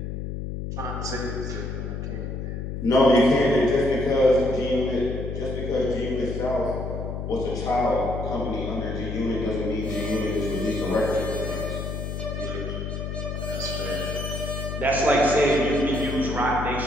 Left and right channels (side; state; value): left; noise; hum, 5 dB below the sound